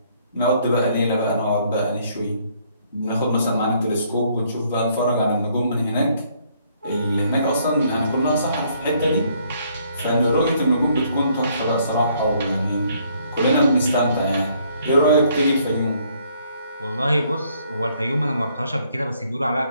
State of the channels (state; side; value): inverted; both; correlation -0.67